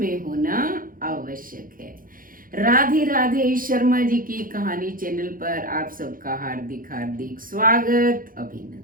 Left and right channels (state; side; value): late; left; 0.41 ms